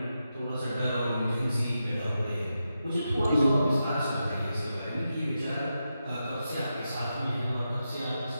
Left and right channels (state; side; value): inverted; both; correlation -0.88